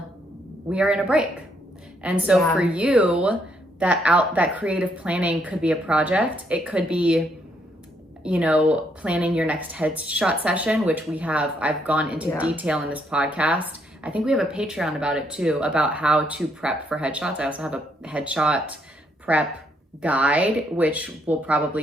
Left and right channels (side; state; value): both; normal; correlation 0.74